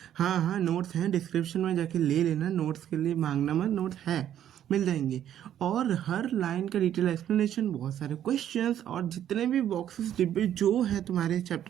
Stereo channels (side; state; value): left; quieter; 10.7 dB